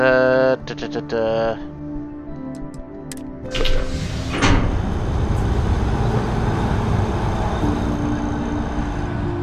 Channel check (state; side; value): identical; both; correlation 1.00